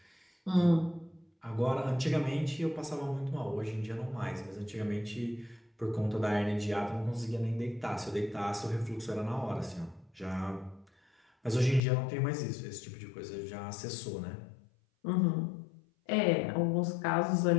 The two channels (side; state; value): right; drops out; at 11.8 s